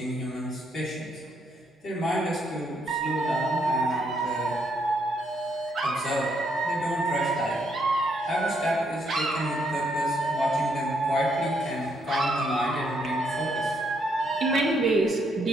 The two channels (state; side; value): normal; both; correlation 0.74